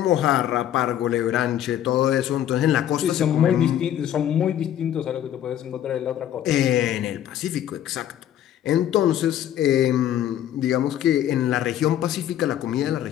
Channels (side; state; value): right; quieter; 11.2 dB